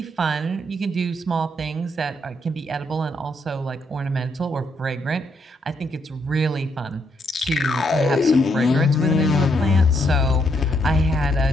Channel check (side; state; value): both; normal; correlation 0.75